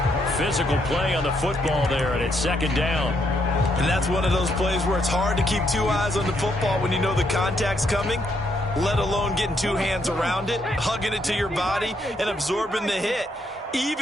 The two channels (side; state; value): both; normal; correlation 0.75